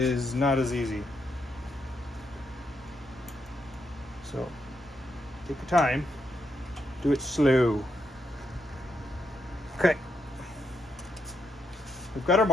not as easy. So take your time, do it slow. Okay, we've got our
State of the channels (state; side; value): normal; both; correlation 0.80